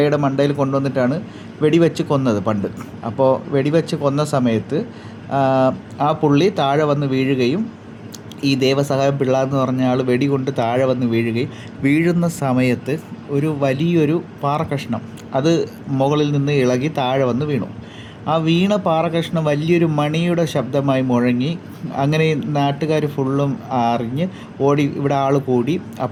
മണ്ടയിൽ കൊണ്ടുവന്നിട്ടാണ് വെടിവെച്ച് കൊന്നത് പണ്ട്. അപ്പോൾ വെടിവെച്ച് കൊന്ന സമയത്ത് ആ പുള്ളി താഴെ വന്ന് വീഴുകയും ഈ ദേവസഹായം പിള്ള എന്ന് പറഞ്ഞ ആൾ വെടികൊണ്ട് താഴെ വന്ന് വീഴുന്ന സമയത്ത് ഒരു വലിയൊരു പാറക്കഷ്ണം അത് മുകളിൽ നിന്ന് ഇളകി താഴെ വന്ന് വീണു. ആ വീണ പാറക്കഷ്ണം വലിയൊരു മണിയുടെ ശബ്ദമായി മുഴങ്ങി. അങ്ങനെ നാട്ടുകാർ ഫുള്ളും അറിഞ്ഞ് ഓടി, ഇവിടെ ആൾ കൂടി.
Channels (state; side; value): identical; both; correlation 1.00